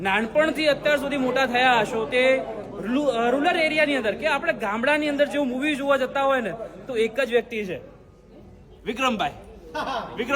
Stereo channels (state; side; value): identical; both; correlation 1.00